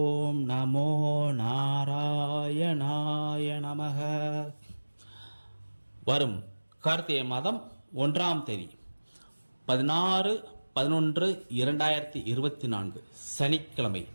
நமோ நாராயணாய நமக. வரும் கார்த்திகை மாதம் 1ஆம் தேதி 16/11/2024 சனிக்கிழமை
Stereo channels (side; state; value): both; inverted; correlation -1.00